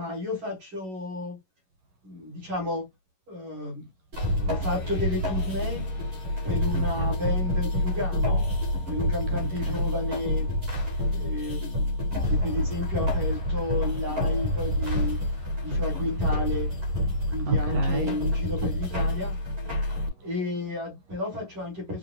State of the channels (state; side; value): late; left; 11 ms